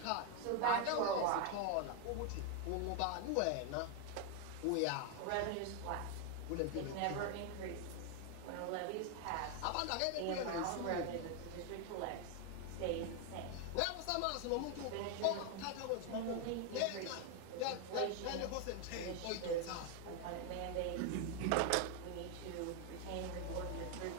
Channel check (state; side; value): different; both; correlation 0.01